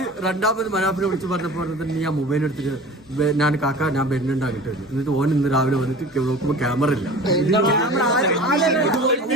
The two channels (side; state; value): both; normal; correlation 0.39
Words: രണ്ടാമത് മനാപ്പിനെ വിളിച്ച് പറഞ്ഞപ്പോ നീ ആ മൊബൈൽ എടുത്തിട്ട് ഞാൻ കാക്ക ഞാൻ വരുന്നുണ്ടാക്കിട്ട് എന്നിട്ട് ഓൻ ഇന്ന് രാവിലെ വന്നിട്ട് നോക്കുമ്പോ ക്യാമറ ഇല്ല.